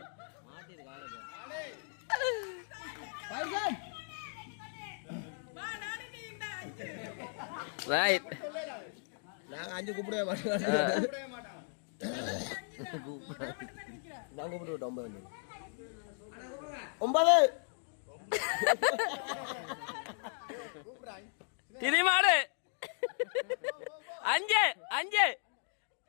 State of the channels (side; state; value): right; silent; 54 dB below the other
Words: ரைட். நாங்க 5 கூப்பிடவே மாட்டோம். நான் கூப்பிட்டு விட்டோம் 9. திரிமாடு 5